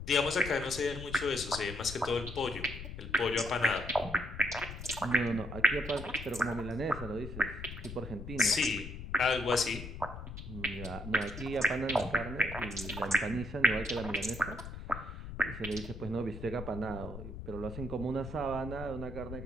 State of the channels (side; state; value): left; noise; rumble, 10 dB below the sound